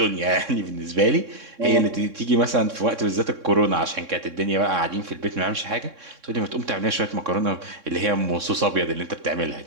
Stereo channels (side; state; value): left; late; 3.6 ms